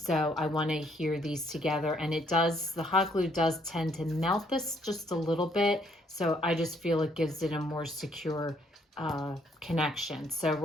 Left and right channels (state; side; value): normal; both; correlation 0.68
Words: I want to adhere these together, and the hot glue does tend to melt this just a little bit. So I just feel it gives it a more secure connection. So